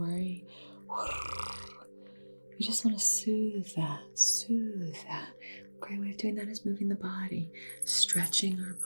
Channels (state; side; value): inverted; both; correlation -1.00